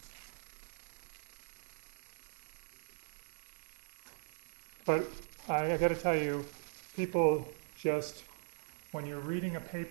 But I got to tell you, people just, when you're reading a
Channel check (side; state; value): left; silent; 51 dB below the other